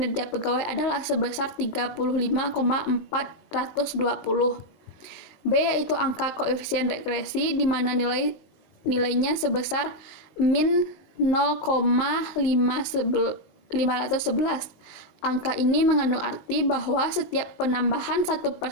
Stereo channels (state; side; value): late; right; 19 ms